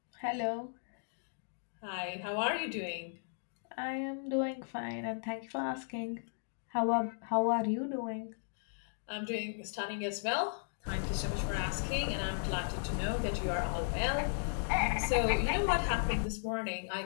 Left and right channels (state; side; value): silent; right; digital silence